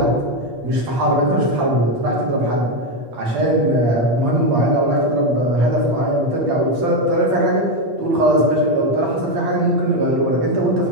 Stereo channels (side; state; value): left; late; 8.5 ms